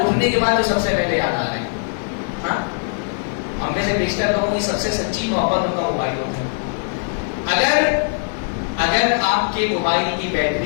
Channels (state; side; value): silent; right; digital silence